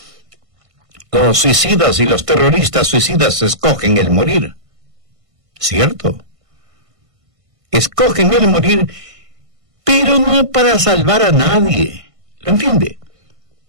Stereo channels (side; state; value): left; late; 1.5 ms